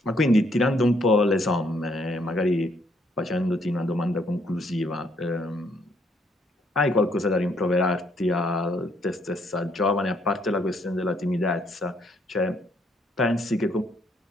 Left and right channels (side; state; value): both; normal; correlation 0.70